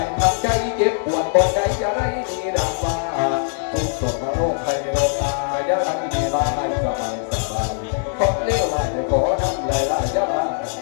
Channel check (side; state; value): right; silent; digital silence